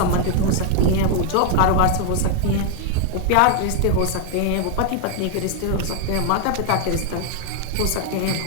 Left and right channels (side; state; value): both; different; correlation 0.00